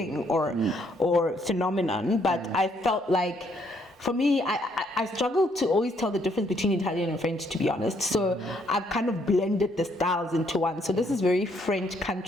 or phenomenon. But I felt like, for me, I struggle to always tell the difference between Italian and French, to be honest. So I've kind of blended the styles into one. So this is very French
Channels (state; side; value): normal; both; correlation 0.70